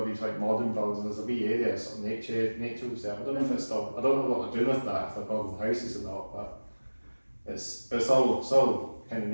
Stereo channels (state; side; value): inverted; both; correlation -1.00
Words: these like modern buildings, there's a wee area, sort of nature was there. I don't know if it's still, I don't know what they're doing with that, if they're building houses or not, but it's all kind of